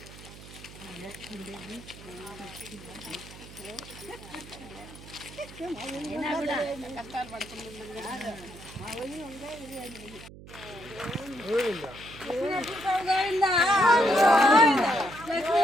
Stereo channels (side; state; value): right; noise; hum, 17 dB below the sound